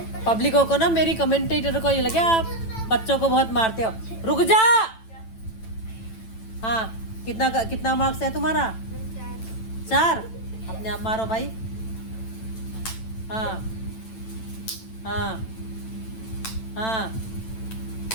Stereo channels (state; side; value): late; right; 9.0 ms